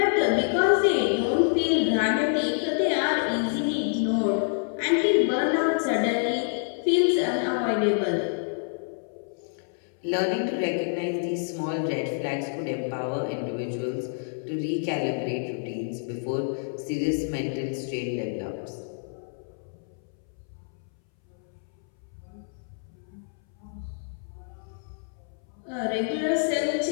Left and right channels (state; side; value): silent; right; 60 dB below the other